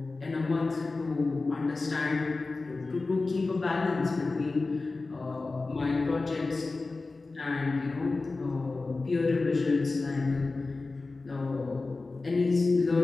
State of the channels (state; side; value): quieter; right; 3.6 dB